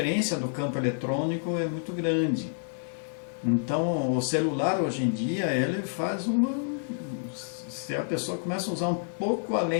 do campo eletrônico é muito grande. Então o celular hoje em dia, ele faz se a pessoa começa a usar um pouco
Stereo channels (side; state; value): right; silent; digital silence